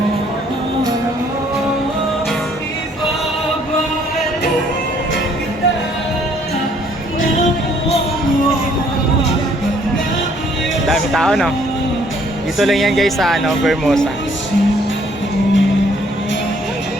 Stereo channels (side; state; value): both; normal; correlation 0.63